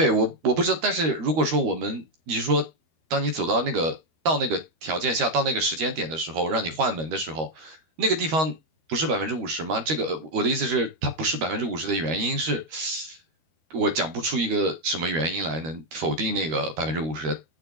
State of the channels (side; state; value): left; late; 13 ms